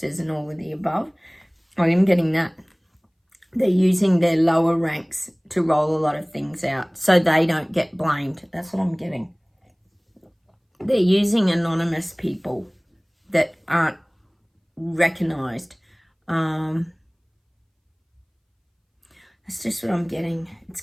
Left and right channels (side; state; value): both; identical; correlation 1.00